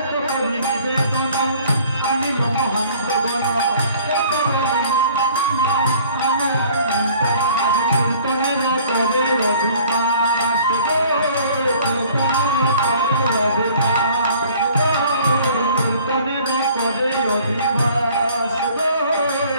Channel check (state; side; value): inverted; both; correlation -0.53